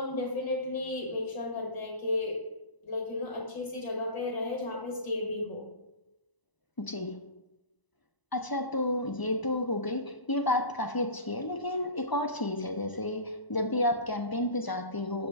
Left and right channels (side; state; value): right; late; 1.0 ms